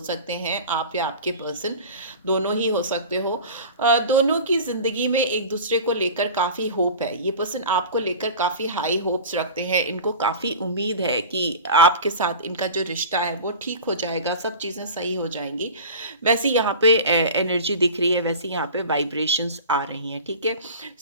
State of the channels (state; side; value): inverted; both; correlation -0.35